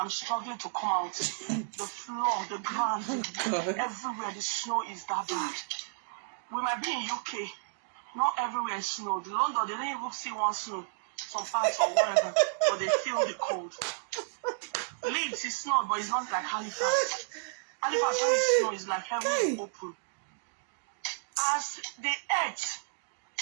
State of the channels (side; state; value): left; silent; digital silence